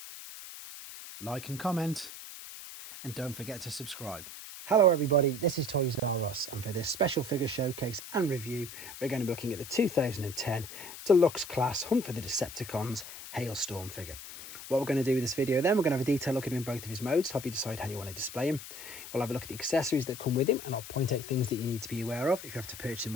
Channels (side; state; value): left; noise; hiss, 12 dB below the sound